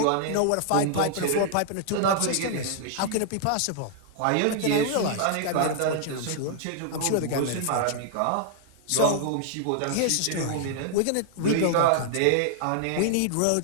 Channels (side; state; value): both; different; correlation -0.01